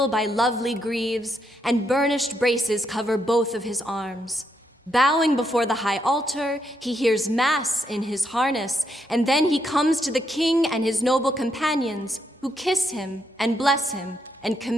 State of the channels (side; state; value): both; normal; correlation 0.78